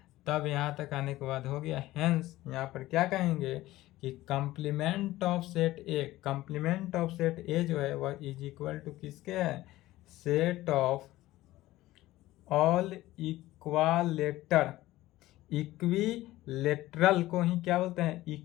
तब यहाँ तक आने के बाद हो गया। हेंस यहाँ पर क्या कहेंगे कि कंप्लीमेंट ऑफ सेट ए जो है वह इज इक्वल टू किसके है? सेट ऑफ ऑल इक्विलेटरल को ही क्या बोलते हैं?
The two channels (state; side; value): quieter; right; 16.7 dB